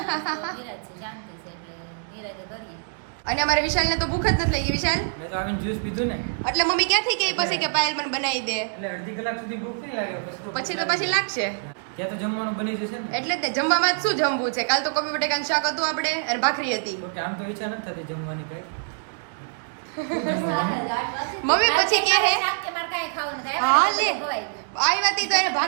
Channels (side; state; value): left; silent; digital silence